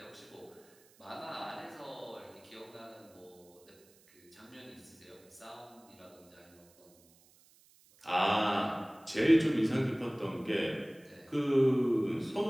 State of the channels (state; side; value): noise; right; hiss, 28 dB below the sound